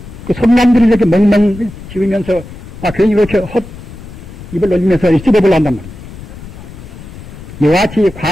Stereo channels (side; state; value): left; noise; rumble, 15 dB below the sound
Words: 그 손남들이 이렇게 멍멍 지으면서 괜히 이렇게 헛 입을 놀리면서 씹어보려 한단 말입니다. 이와 같이